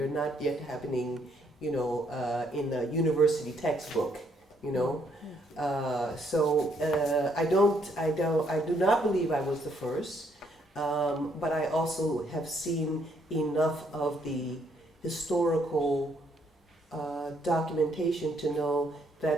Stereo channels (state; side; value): normal; both; correlation 0.71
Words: not yet happening, you know, in a university textbook, you know. I do not believe I was the first, but I also have seen enough of the historical documentation to know